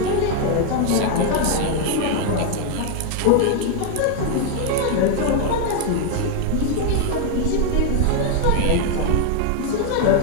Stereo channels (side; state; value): both; different; correlation 0.00